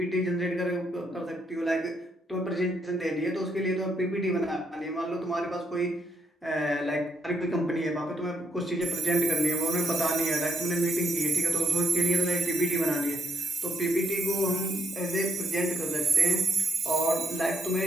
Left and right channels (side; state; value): both; normal; correlation 0.73